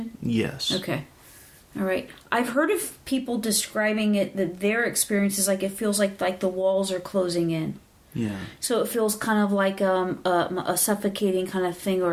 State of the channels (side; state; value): both; identical; correlation 1.00